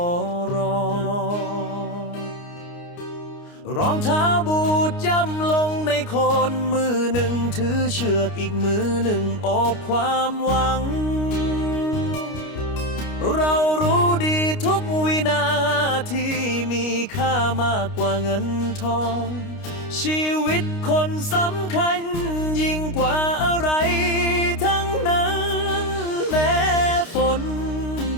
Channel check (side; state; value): right; late; 29 ms